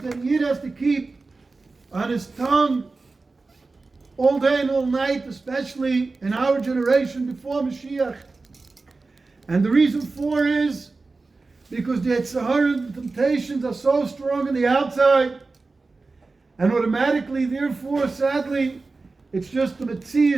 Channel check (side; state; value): left; quieter; 3.8 dB